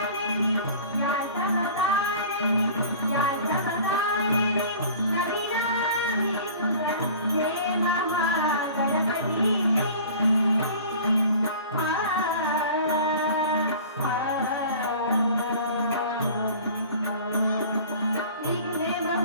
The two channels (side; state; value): both; inverted; correlation -0.43